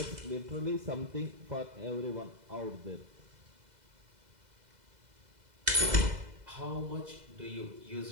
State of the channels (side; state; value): left; late; 2.0 ms